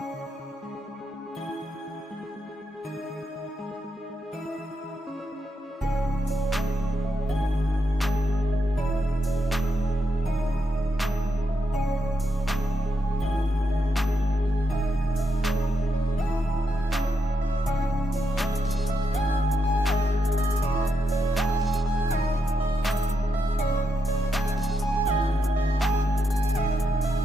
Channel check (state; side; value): normal; both; correlation 0.82